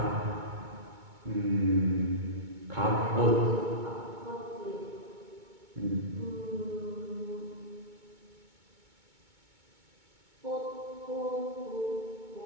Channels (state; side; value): late; left; 2.2 ms